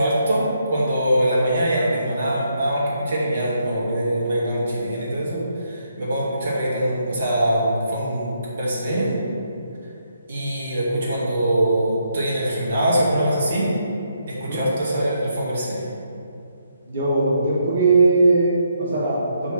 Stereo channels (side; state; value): both; inverted; correlation -0.77